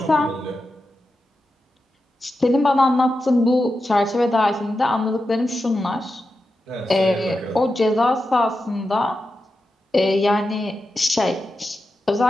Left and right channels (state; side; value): normal; both; correlation 0.90